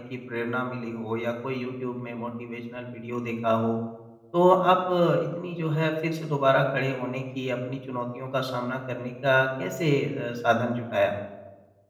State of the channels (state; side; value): identical; both; correlation 1.00